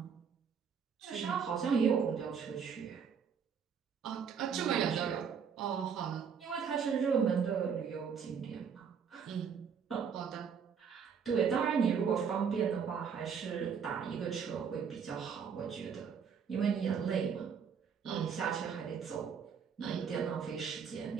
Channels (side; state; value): left; quieter; 6.8 dB